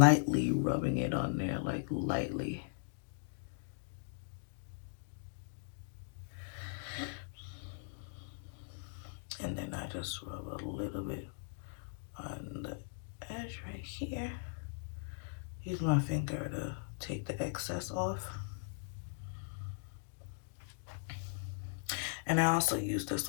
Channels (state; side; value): silent; right; digital silence